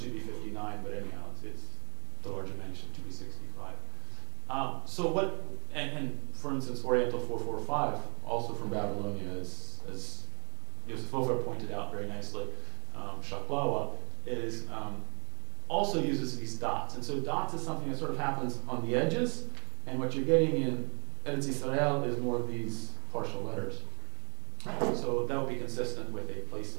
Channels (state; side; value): quieter; left; 34.7 dB